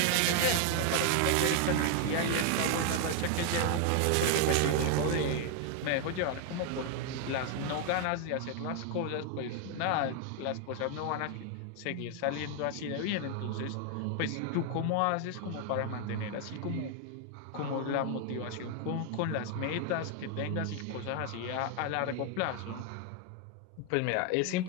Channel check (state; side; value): different; both; correlation 0.00